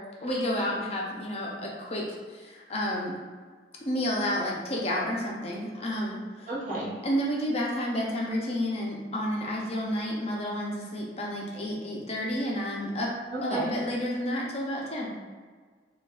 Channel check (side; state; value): both; normal; correlation 0.46